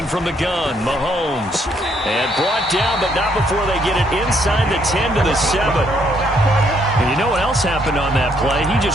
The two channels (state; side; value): normal; both; correlation 0.70